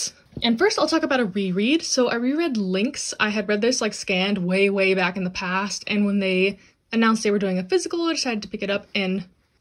And first I'll talk about a reread. So I reread Lynx. I had read this like scanned way back in the past, and when they announced they were doing a physical, I decided to pick it up and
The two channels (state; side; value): identical; both; correlation 1.00